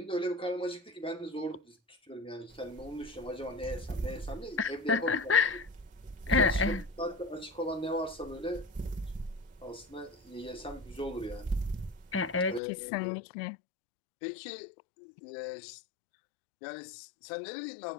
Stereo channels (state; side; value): drops out; right; at 12.6 s